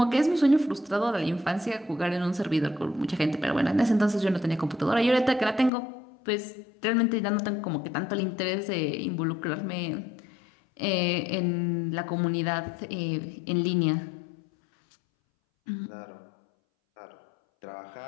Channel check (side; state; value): right; drops out; at 5.7 s